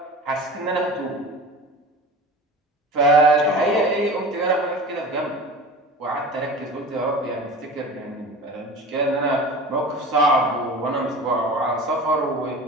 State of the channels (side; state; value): both; normal; correlation 0.36